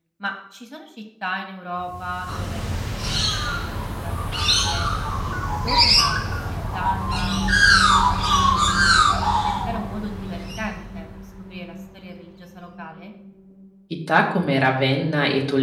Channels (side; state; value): both; identical; correlation 1.00